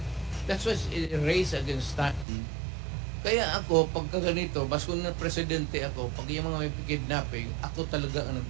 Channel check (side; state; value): left; drops out; at 2.2 s